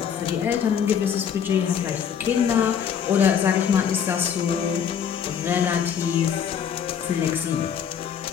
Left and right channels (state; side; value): quieter; right; 7.9 dB